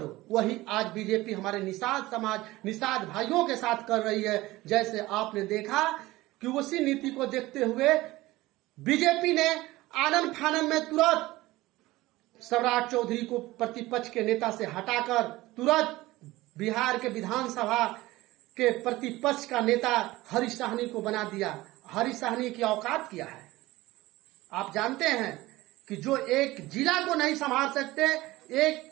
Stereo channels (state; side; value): quieter; left; 18.6 dB